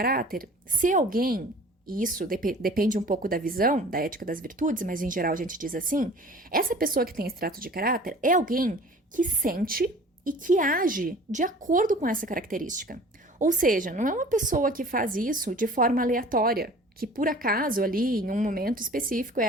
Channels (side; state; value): both; normal; correlation 0.45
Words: ser alguém. E isso depende um pouco da visão da ética das virtudes, mas em geral a gente diz assim, essa pessoa que tem esse traço de caráter é alguém que sente e que age de acordo com essa característica. Ou seja, não é uma pessoa que faz isso de forma aleatória, que por acaso ali, em um momento específico,